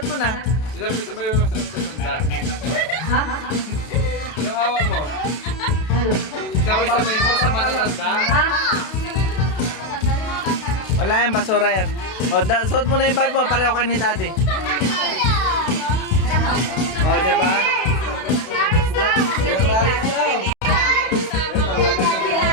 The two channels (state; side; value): late; right; 32 ms